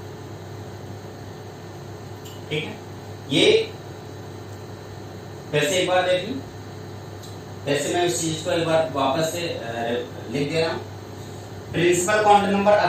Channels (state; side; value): identical; both; correlation 1.00